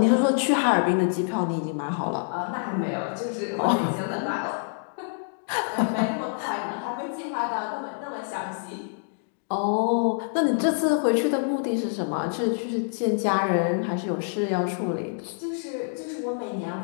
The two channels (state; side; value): silent; right; digital silence